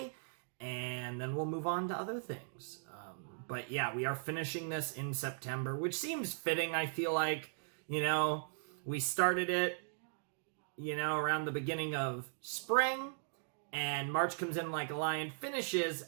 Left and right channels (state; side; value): silent; left; digital silence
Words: and then we'll move on to other things. But yeah, we are finishing this in September, which seems fitting, I feel like. You know, we started it, you know, around the beginning of spring, and March Comes In Like a Lion finishes